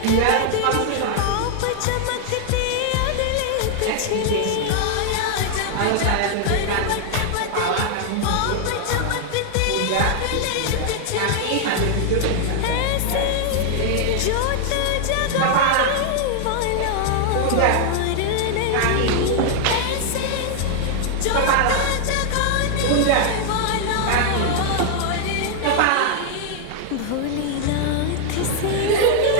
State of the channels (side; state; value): both; different; correlation 0.00